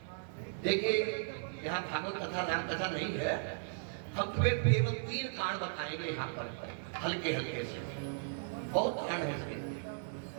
देखिए, यहाँ भागवत कथा राम कथा नहीं है, हम तुम्हें केवल 3 कांड बताएंगे यहाँ पर हल्के हल्के से। बहुत कांड है इसके।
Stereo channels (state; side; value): silent; left; digital silence